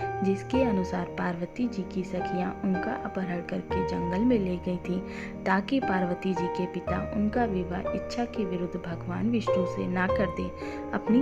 जिसके अनुसार पार्वती जी की सखियां उनका अपहरण करके जंगल में ले गई थी ताकि पार्वती जी के पिता उनका विवाह इच्छा के विरुद्ध भगवान विष्णु से ना कर दे।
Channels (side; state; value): both; identical; correlation 1.00